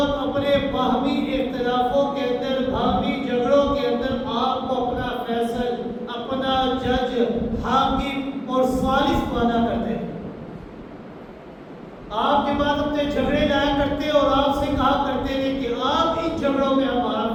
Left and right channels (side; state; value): both; identical; correlation 1.00